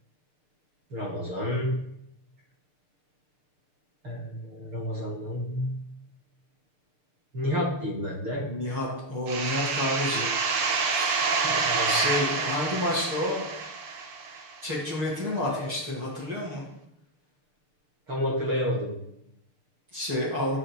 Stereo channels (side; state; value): left; late; 6.7 ms